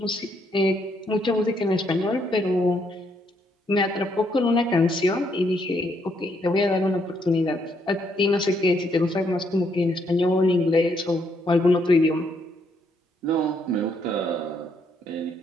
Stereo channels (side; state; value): both; normal; correlation 0.73